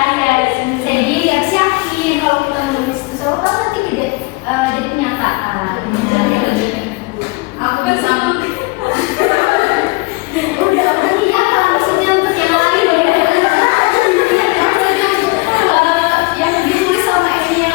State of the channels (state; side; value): quieter; right; 25.7 dB